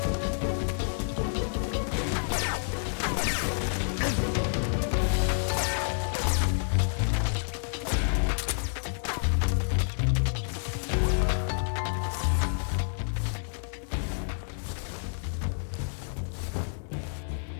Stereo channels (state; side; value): silent; right; digital silence